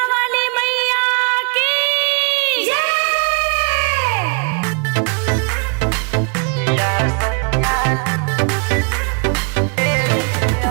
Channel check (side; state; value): left; quieter; 36.2 dB